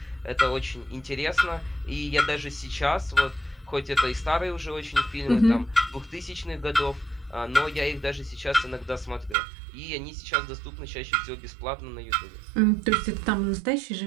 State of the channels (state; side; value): drops out; left; at 9.3 s